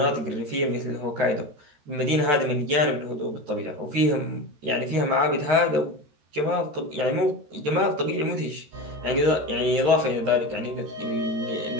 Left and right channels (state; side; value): late; left; 14 ms